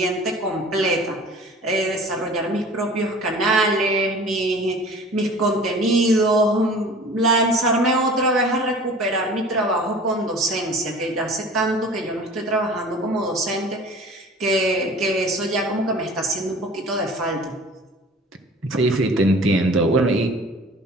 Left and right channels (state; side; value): normal; both; correlation 0.44